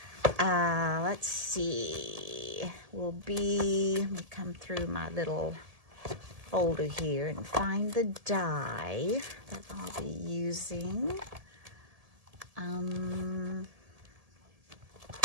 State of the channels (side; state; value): left; late; 1.7 ms